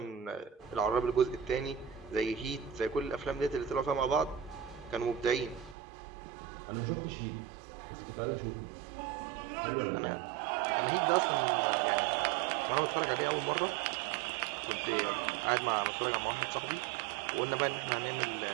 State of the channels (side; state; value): left; drops out; at 5.8 s